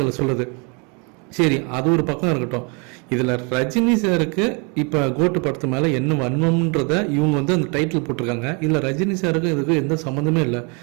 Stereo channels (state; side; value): quieter; left; 33.6 dB